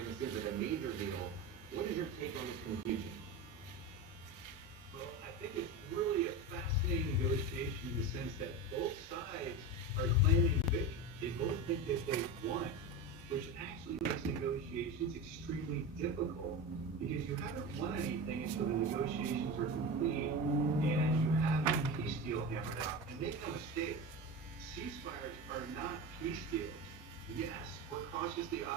seems like a major deal. What is your take on this confusion? Well, I think it's really a fascinating negotiation in the sense that both sides are claiming victory. They both think that they've won, which actually makes negotiations extremely difficult because you haven't won anything until the negotiations are complete and you have a peace deal hammered out. And make no mistake, ceasefires are not peace deals. Yes, we're cautiously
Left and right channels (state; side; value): normal; both; correlation 0.24